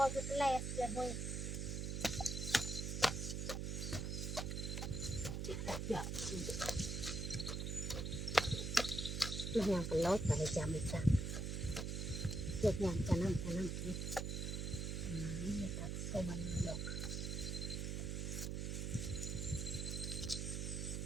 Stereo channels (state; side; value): noise; right; hum, 2 dB below the sound